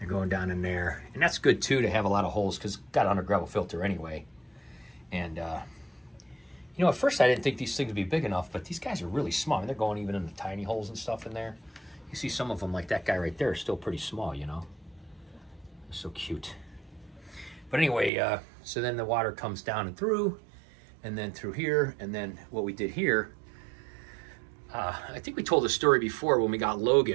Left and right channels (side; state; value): left; drops out; at 18.1 s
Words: going down in there. And that's good, too, to have a lot of holes because it's got an under gravel filter anyway. And, you know, at first I didn't think these things would be big enough, but these guys are really small. I mean, they're going even in the tiny holes and stuff in there. You see some of them, like that guy right there, is still pretty small, you know. They're so cute. But anyway, so then the water comes down and through, and then through here, and then what we did here, I think we told the story before when we got